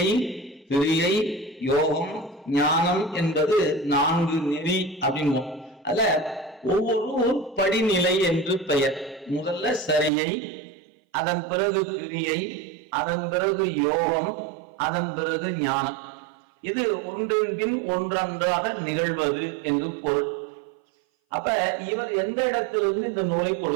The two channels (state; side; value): drops out; left; at 10.1 s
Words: கிரியை, யோகம், ஞானம் என்பது 4 நெறி அப்படின்போம். அல்ல, ஒவ்வொரு படிநிலை என்று பெயர். முதல்ல சரியை, அதன் பிறகு கிரியை, அதன் பிறகு யோகம், அதன் பிறகு ஞானம். இது ஒன்றின் பின் ஒன்றொன்றாக நிகழ்வது என்று பொருள். அப்ப இவர் எந்த இடத்திலிருந்து இந்த நூலை